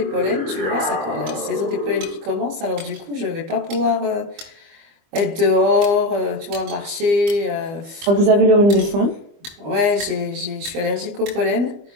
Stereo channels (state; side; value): late; left; 25 ms